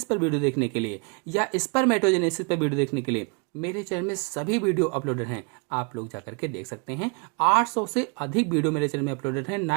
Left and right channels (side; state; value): left; quieter; 34.6 dB